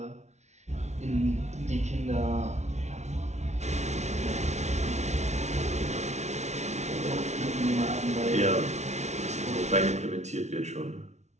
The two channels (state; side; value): late; left; 0.32 ms